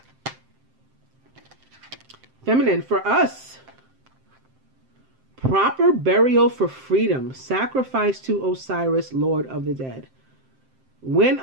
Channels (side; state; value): left; late; 7.7 ms